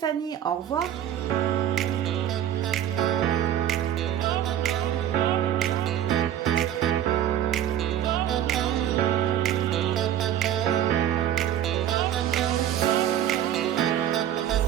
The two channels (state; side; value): quieter; left; 10.8 dB